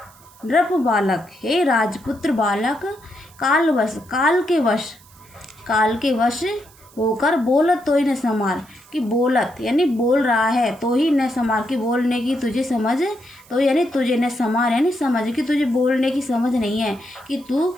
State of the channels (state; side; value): noise; right; hiss, 26 dB below the sound